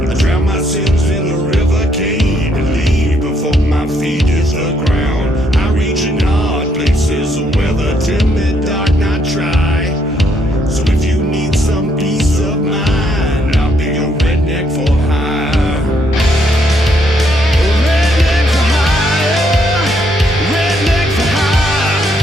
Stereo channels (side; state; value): both; normal; correlation 0.72